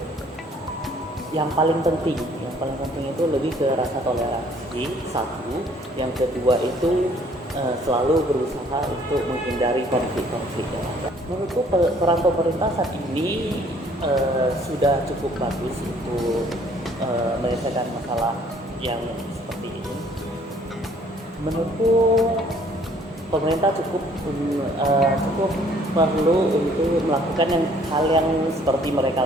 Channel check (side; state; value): both; normal; correlation 0.59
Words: yang paling penting itu lebih ke rasa toleransi, satu. Yang kedua itu selalu berusaha untuk menghindari konflik-konflik. Menurutku peran pemerintah saat ini sudah cukup bagus untuk menyelesaikan masalah yang seperti ini. Menurutku pemerintah cukup perlu untuk melakukan hal yang seperti mereka